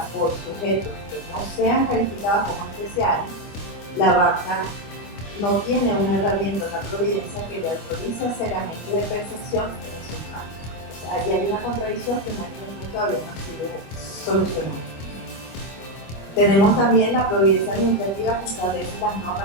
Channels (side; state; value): right; late; 25 ms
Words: por sujetos que no no sean calificadas como especiales, la banca no tiene una herramienta, una providencia que le autorice a ser agente de percepción de resultados. O sea, allí hay una contradicción que en este momento todavía no ha sido solucionada. Tenemos también la providencia administrativa que establece las